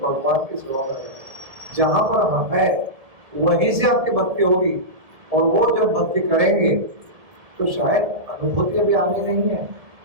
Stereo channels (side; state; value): left; late; 1.7 ms